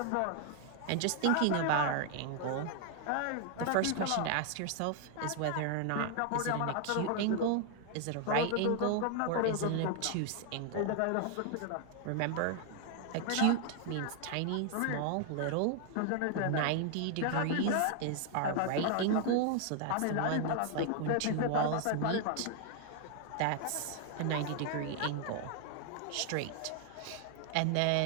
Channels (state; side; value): different; both; correlation 0.00